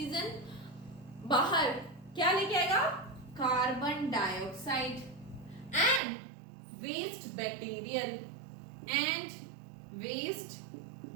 बाहर क्या लेके आएगा? Carbon dioxide and waste material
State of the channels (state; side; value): drops out; left; at 6.0 s